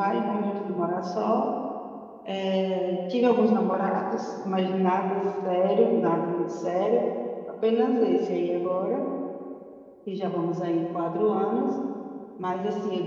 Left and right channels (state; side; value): identical; both; correlation 1.00